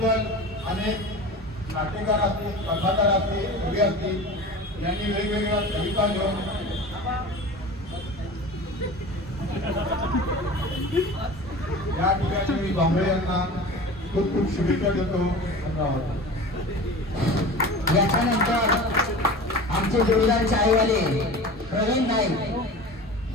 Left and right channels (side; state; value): both; normal; correlation 0.35